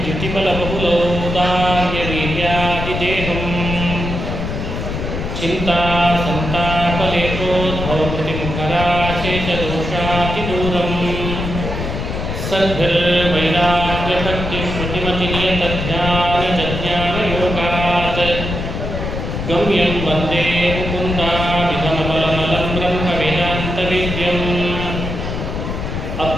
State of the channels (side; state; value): left; noise; rumble, 4 dB below the sound